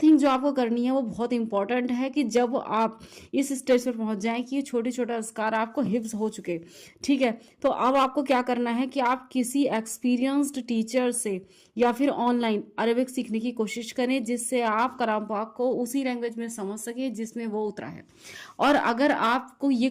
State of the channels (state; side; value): identical; both; correlation 1.00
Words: تھنگ جو آپ کو کرنی ہے وہ بہت امپورٹنٹ ہے کہ جب آپ اس اسٹیج پر پہنچ جائیں کہ یہ چھوٹے چھوٹے اذکار آپ کو حفظ ہو چکے، ٹھیک ہے، تو اب آپ کو کیا کرنا ہے کہ آپ کسی ایکسپیرینسڈ ٹیچر سے یا پھر آن لائن عربک سیکھنے کی کوشش کریں، جس سے آپ کلام پاک کو اسی لینگویج میں سمجھ سکیں جس میں وہ اترا ہے۔ اور اگر آپ کو یہ